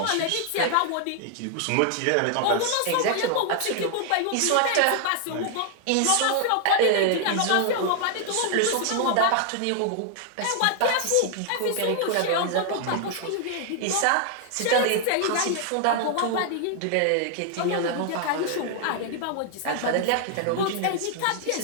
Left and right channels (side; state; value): both; different; correlation 0.00